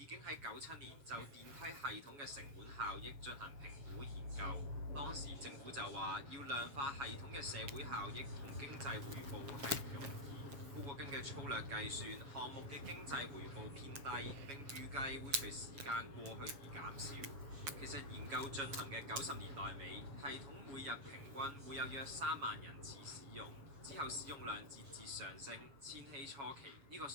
經喺97年就電梯系統嘅成本效益進行評估研究。當時政府就話要量化系統嘅社會效益同經濟回報係唔容易。不過根據粗略計算，項目嘅經濟回報偏低，並預計會隨時間過去而減少。其實研究進行嘅90年代尾，系統每日平均會有約3萬人次使用。之後使用量節節上升，千禧初期呢個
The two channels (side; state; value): left; late; 7.2 ms